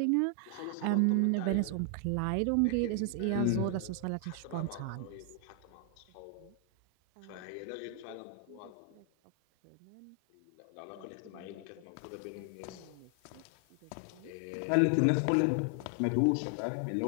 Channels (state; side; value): different; both; correlation 0.00